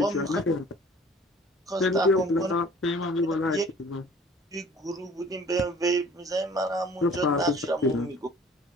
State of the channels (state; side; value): normal; both; correlation 0.50